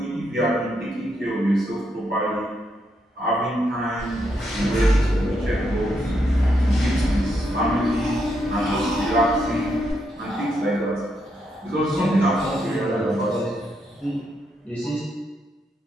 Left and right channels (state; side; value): normal; both; correlation 0.79